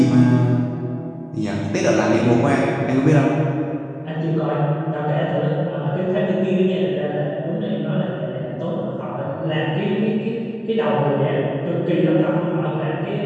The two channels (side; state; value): both; identical; correlation 1.00